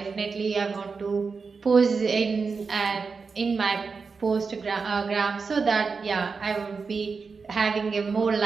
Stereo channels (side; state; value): left; quieter; 4.9 dB